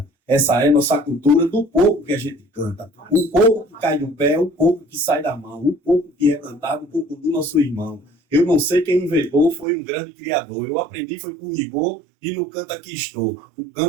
Essa é nossa cultura do pouco que a gente canta. O pouco que cai do pé, o pouco que sai da mão, o pouco que é cantado, o pouco do nosso irmão. Eu não sei quem inventou, foi um grande criador. Eu aprendi, foi com rigor e no canto aqui estou. O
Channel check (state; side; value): drops out; left; at 9.7 s